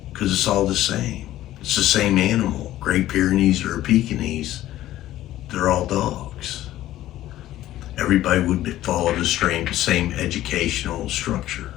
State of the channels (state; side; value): quieter; right; 14.2 dB